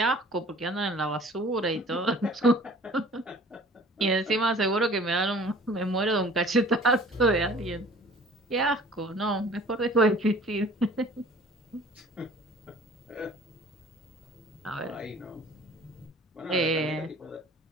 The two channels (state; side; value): normal; both; correlation 0.49